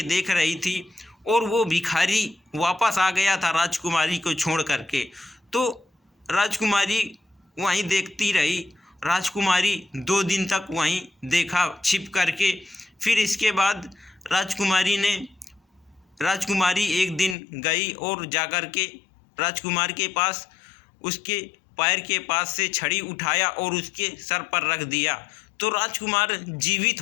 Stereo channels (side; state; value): right; drops out; at 17.4 s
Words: देख रही थी और वो भिखारी वापस आ गया था राजकुमारी को छोड़ करके। तो राजकुमारी वहीं देखती रही। राजकुमारी 2 दिन तक वहीं देखा छिप करके। फिर इसके बाद राजकुमारी एक दिन गई और जाकर के राजकुमार के पास उसके पैर के पास से छड़ी उठाया और उसके सर पर रख दिया, तो राजकुमार जीवित